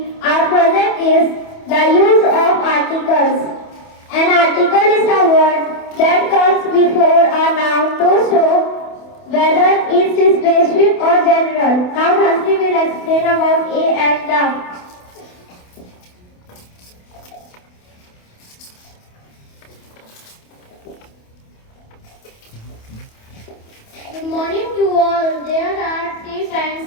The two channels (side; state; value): right; late; 28 ms